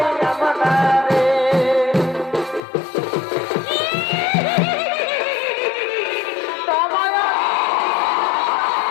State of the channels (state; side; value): drops out; right; at 2.6 s